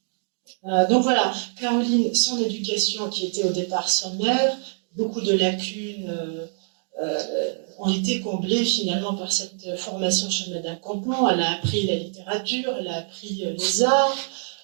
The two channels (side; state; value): left; silent; 62 dB below the other